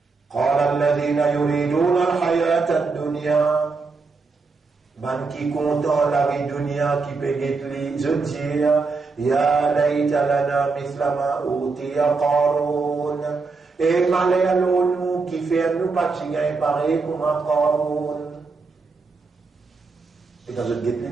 قال الذين يريدون الحياة الدنيا. Man qui content la vie dunya qui peut les dire ya layta lana mithla ma utiya Qarun. Et malheur nous qui fait nous pas gagner pareil comme un Qarun. Et quand je guette les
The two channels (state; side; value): quieter; left; 4.3 dB